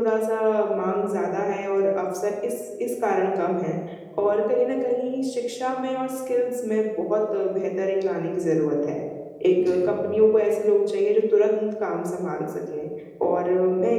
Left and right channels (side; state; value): both; identical; correlation 1.00